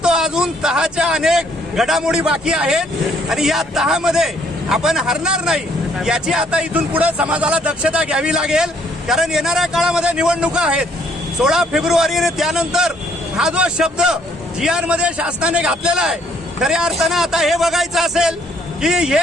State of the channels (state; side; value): normal; both; correlation 0.65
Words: तो अजून तहाच्या अनेक घडामोडी बाकी आहेत आणि या तहामध्ये आपण हरणार नाही याची आता इथून पुढे समाजाला दक्षता घ्यावी लागेल. कारण येणाऱ्या काळामध्ये निवडणुका आहेत. 16 फेब्रुवारी त्यानंतर हा जो शब्द GR मध्ये शासनाने घातलेला आहे खऱ्या अर्थानं आता हे बघायचं असेल की